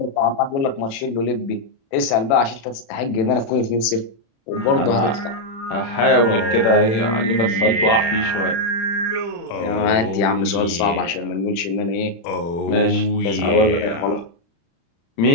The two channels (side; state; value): right; late; 36 ms